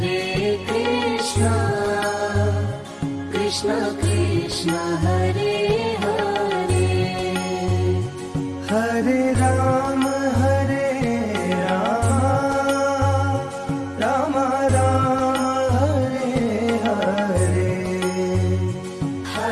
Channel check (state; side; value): identical; both; correlation 1.00